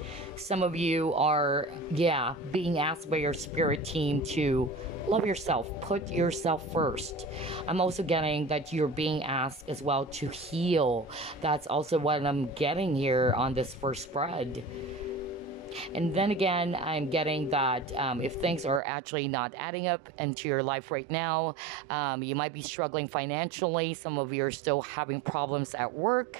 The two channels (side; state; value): left; drops out; at 18.8 s